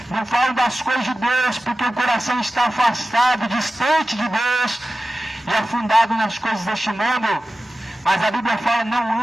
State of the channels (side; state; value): both; normal; correlation 0.94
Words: Não falam das coisas de Deus, porque o coração está afastado, distante de Deus e afundado nas coisas deste mundo. Mas a Bíblia fala,